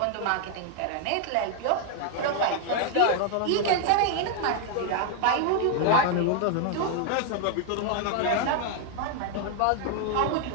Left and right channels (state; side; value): different; both; correlation 0.00